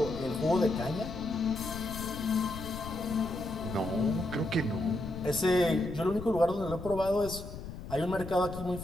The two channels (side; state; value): left; noise; rumble, 10 dB below the sound